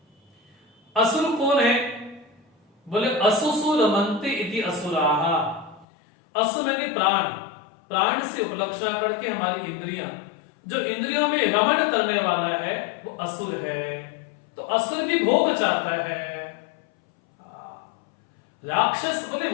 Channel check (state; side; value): drops out; right; at 5.9 s